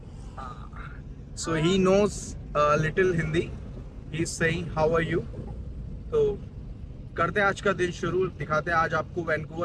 So he knows a little Hindi. He's saying how are you? तो करते हैं आज का दिन शुरू, दिखाते हैं आज आपको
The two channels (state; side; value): identical; both; correlation 1.00